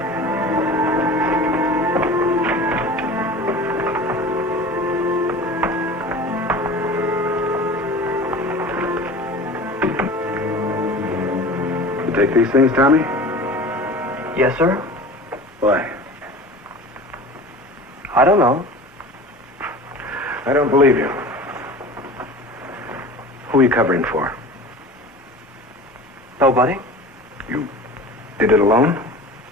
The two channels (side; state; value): both; normal; correlation 0.37